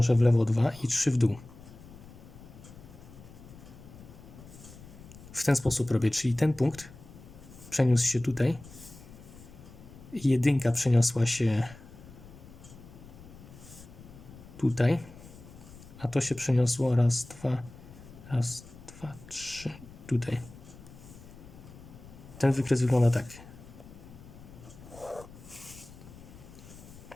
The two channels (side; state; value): left; noise; rumble, 18 dB below the sound